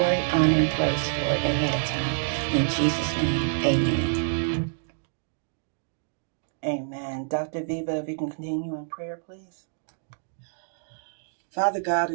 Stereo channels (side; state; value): left; silent; digital silence